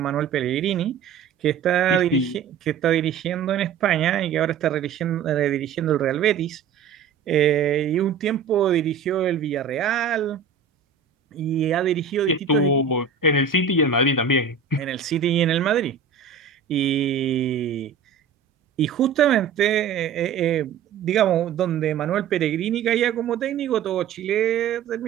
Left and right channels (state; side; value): quieter; left; 6.7 dB